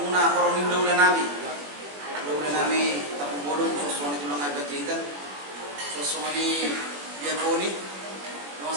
korong udah nami. Udah nami tapu bodong sosoni tulang ibadah jahitan. Sosoni diakoni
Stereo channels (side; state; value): left; late; 21 ms